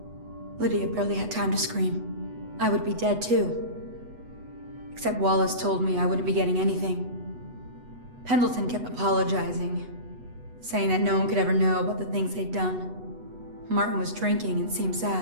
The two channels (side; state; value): left; late; 8.1 ms